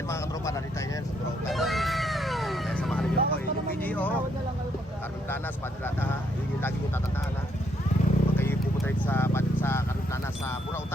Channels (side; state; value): both; normal; correlation 0.73